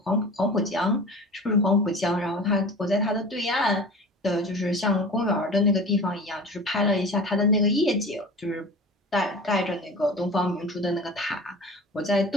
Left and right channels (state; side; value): normal; both; correlation 0.37